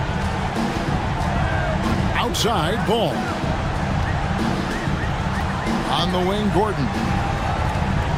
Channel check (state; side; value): identical; both; correlation 1.00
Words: Outside, Ball. On the wing, Gordon.